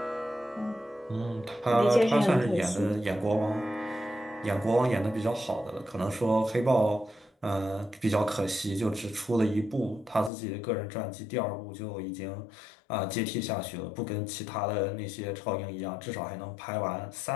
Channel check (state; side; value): drops out; right; at 10.3 s